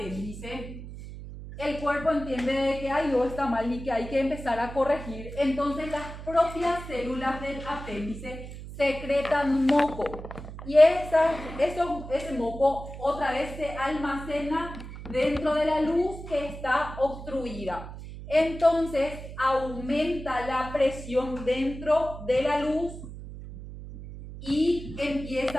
el cuerpo entiende que algo está mal y que hay que empezar a corregir. Entonces, las propias células del apéndice secretan moco. Y ese moco otra vez se almacena dentro de la luz que está obstruida. Entonces aumenta la presión dentro de la luz y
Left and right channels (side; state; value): right; noise; hum, 11 dB below the sound